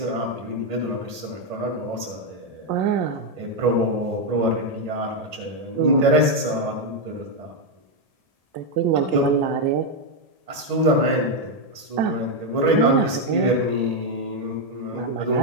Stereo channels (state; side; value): late; left; 1.8 ms